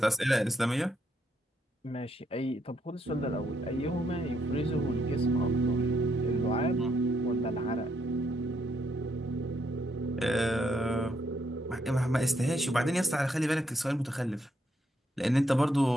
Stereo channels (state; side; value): normal; both; correlation 0.76